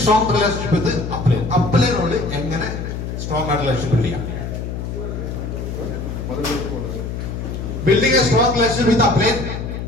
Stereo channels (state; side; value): noise; left; hum, 5 dB below the sound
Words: strong relationship with upline. അപ്ലൈനോട് എങ്ങനെ സ്ട്രോങ് ആയിട്ട് റിലേഷൻഷിപ്പ് ബിൽഡ് ചെയ്യാം? Building a strong relationship with upline